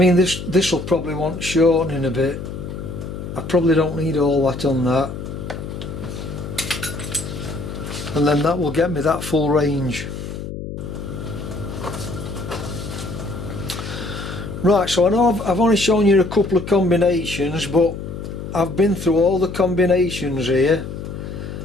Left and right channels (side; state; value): left; noise; hum, 8 dB below the sound